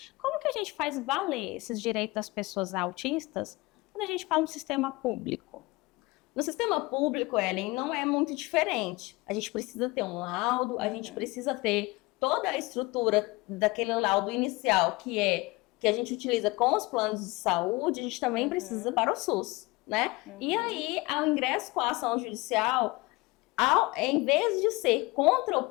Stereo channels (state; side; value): quieter; right; 23.1 dB